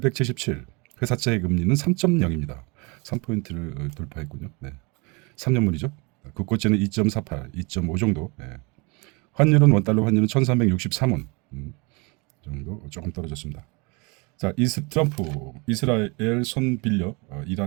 회사채 금리는 3.0입니다. 3포인트를 돌파했군요. 네. 3년물이죠. 국고채는 2.48, 2.5 정도. 네. 환율은 원달러 환율은 1363원 정도 조금 떨어졌습니다. 자, 트럼프 이스라엘 손 빌려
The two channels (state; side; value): quieter; left; 29.0 dB